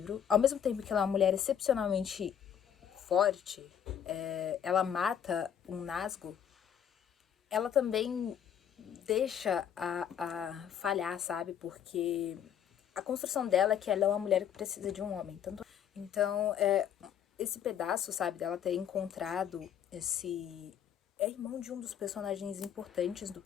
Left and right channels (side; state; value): right; quieter; 8.9 dB